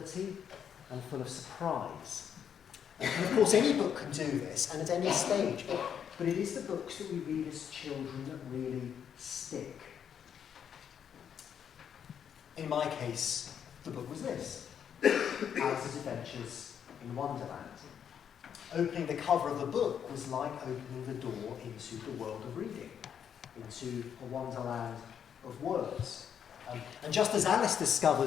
and full of surprise. And of course, any book can do this, and at any stage, but it is the books that we read as children that really stick. In my case, the book was this, Alice's Adventures in Wonderland. Opening the cover of the book was like opening the door into the world of reading, into a wonderland of words. And just as Alice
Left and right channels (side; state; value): right; quieter; 8.3 dB